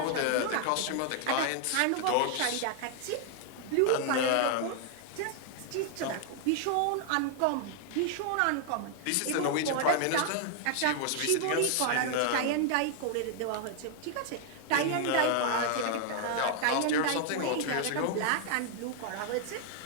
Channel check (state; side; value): different; both; correlation 0.00